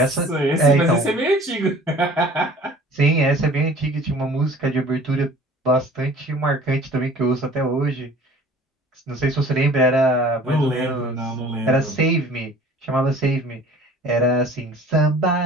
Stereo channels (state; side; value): normal; both; correlation 0.47